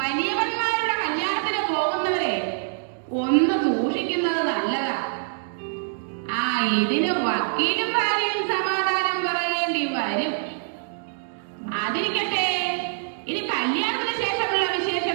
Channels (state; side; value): silent; left; digital silence